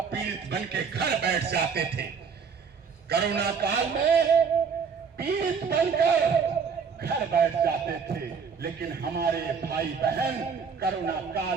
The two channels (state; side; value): quieter; left; 6.0 dB